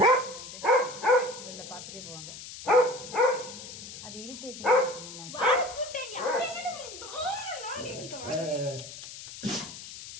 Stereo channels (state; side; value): noise; left; hiss, 12 dB below the sound